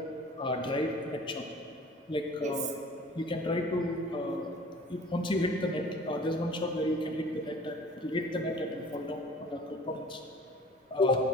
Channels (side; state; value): both; normal; correlation 0.47